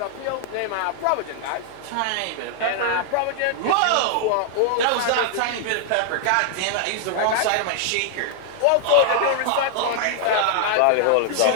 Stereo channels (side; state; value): both; different; correlation 0.00